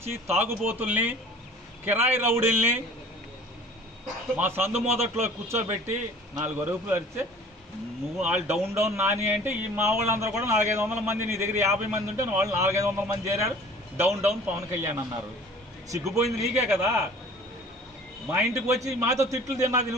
తాగుబోతుల్ని కిరాయి రౌడీల్ని మా సందు మొదట్లో కూర్చోబెట్టి 4 అరుపులు అరిస్తే నువ్వు వాళ్ళు డౌన్ నాని అంటే ఈ మా వాళ్ళందరూ కూడా 400-500 మంది, నీ దగ్గర 50 మంది ఉంటే వాళ్ళు 400-500 మంది చేరారు, డౌన్ పవన్ కళ్యాణ్ అన్నారు. సిగ్గుపోయింది నీకే కదా. మా ఇంటికి వచ్చి మాతో తిట్లు తిన్నది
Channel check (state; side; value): normal; both; correlation 0.47